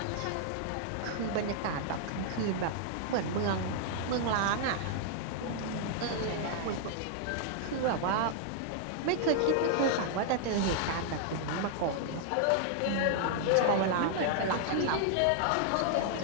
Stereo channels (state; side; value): different; both; correlation -0.01